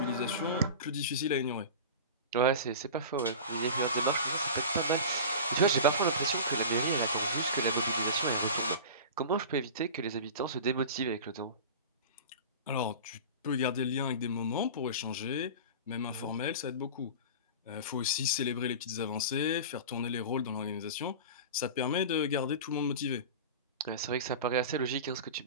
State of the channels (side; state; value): both; inverted; correlation -0.32